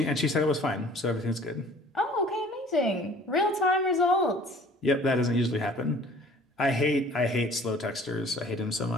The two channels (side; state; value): both; normal; correlation 0.50